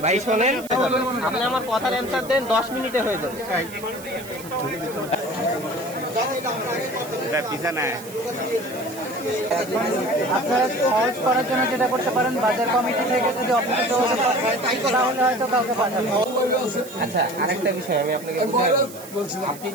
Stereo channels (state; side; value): noise; right; hiss, 16 dB below the sound